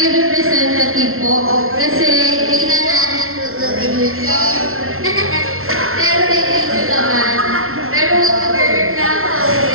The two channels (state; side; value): late; left; 0.62 ms